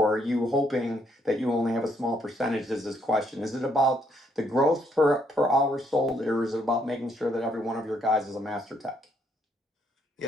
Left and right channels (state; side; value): normal; both; correlation 0.71